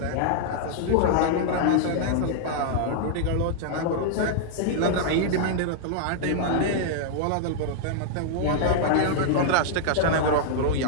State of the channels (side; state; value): both; different; correlation -0.01